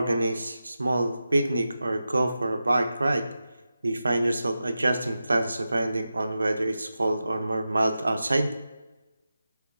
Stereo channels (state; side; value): inverted; both; correlation -0.92